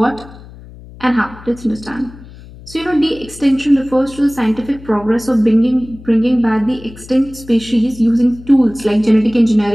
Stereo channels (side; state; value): left; noise; hum, 19 dB below the sound